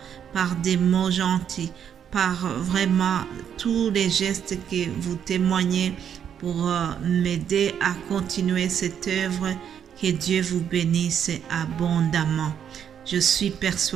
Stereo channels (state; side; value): quieter; left; 8.6 dB